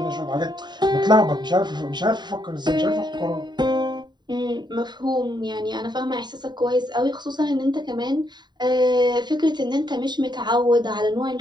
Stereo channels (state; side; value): late; left; 0.21 ms